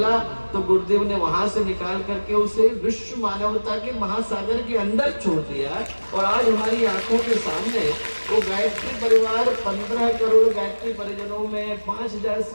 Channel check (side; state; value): both; inverted; correlation -1.00